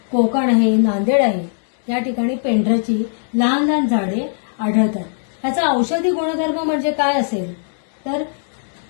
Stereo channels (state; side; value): silent; right; digital silence